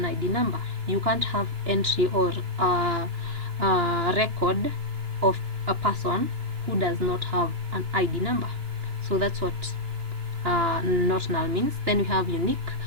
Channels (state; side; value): late; left; 2.9 ms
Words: ID number. You can't have entry or record of a person who does not have an ID number. So that's what not null means. Then we have unique.